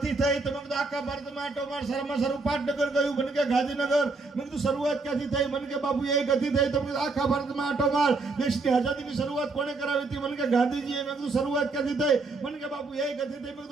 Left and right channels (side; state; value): left; quieter; 3.7 dB